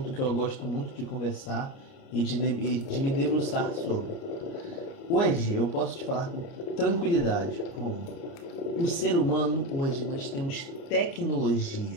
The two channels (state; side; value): late; right; 29 ms